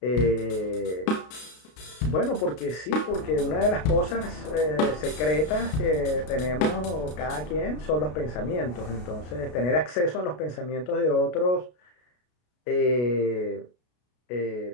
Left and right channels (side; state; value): right; late; 33 ms